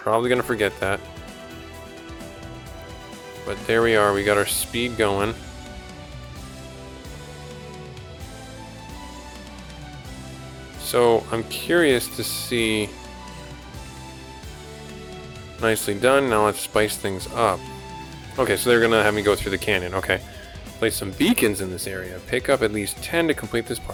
going to forget that. But there we are. We got our speed going. So I'm curious to see. Nicely done. Now let's spice things up. Okay, so they're gonna have me go through the canyon. Okay. Place some beacons in this area. Pick up at least 10 to complete this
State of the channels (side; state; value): both; identical; correlation 1.00